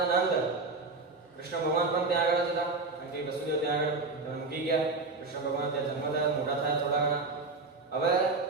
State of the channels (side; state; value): left; quieter; 3.7 dB